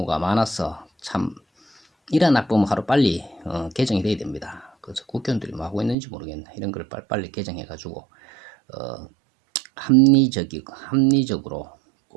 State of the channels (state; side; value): drops out; left; at 6.0 s